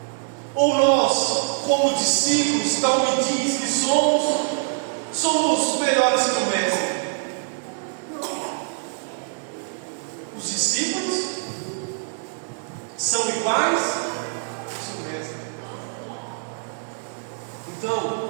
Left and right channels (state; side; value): silent; left; digital silence